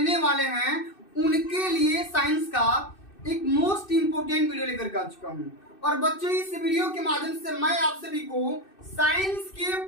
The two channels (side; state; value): right; late; 2.6 ms